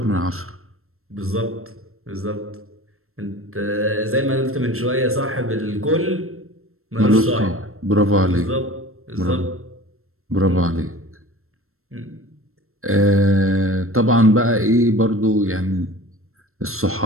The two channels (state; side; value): late; left; 0.62 ms